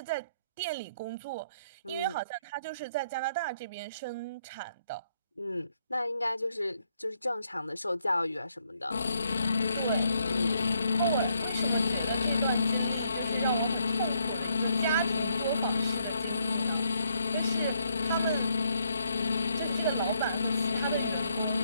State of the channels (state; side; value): inverted; both; correlation -0.72